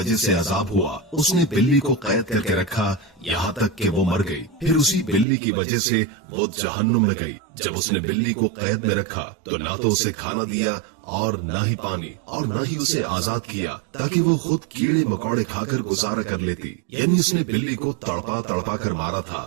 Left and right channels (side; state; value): left; drops out; at 5.2 s